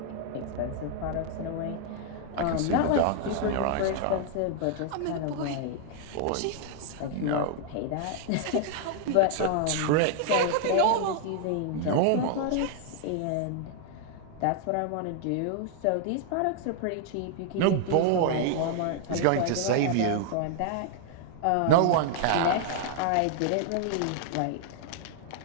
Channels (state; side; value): different; both; correlation 0.00